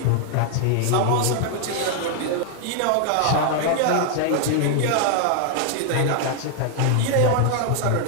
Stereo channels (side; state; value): both; different; correlation 0.00